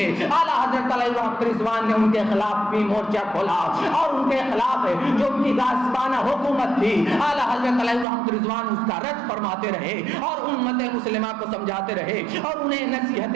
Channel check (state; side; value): drops out; left; at 8.1 s